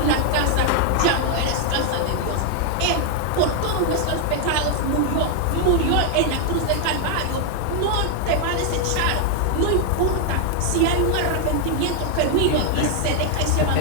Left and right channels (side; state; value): both; different; correlation 0.00